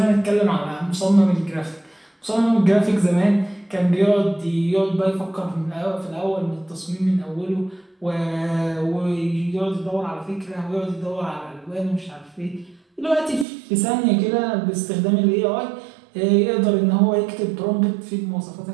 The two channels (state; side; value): drops out; left; at 13.5 s